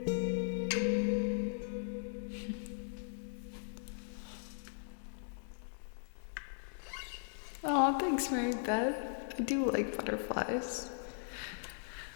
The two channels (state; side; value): silent; right; digital silence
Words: Oh, thanks, Mary Beth. I do like butterflies.